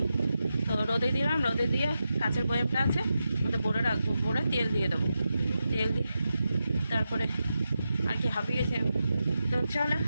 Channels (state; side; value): inverted; both; correlation -0.89